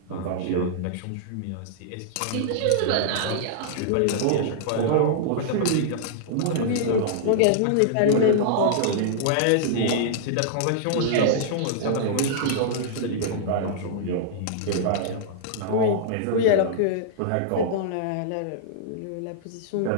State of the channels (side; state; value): both; different; correlation -0.02